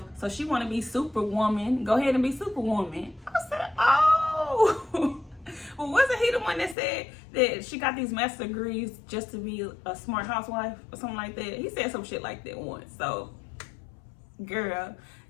so she want to be Superwoman. Go ahead and be Superwoman. I said, oh. Well, wasn't he the one that said that she got these master degrees just to be a smart housewife or something like that? He said some shit like that once. So, girl,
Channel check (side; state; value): right; drops out; at 6.8 s